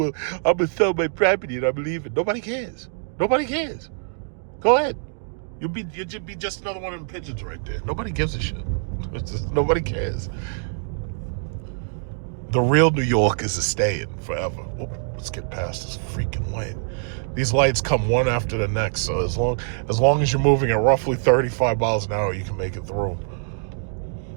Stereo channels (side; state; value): left; silent; digital silence